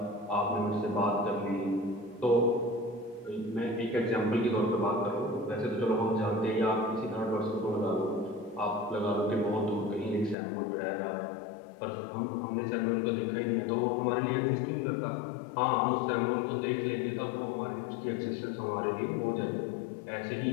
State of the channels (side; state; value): right; drops out; at 10.4 s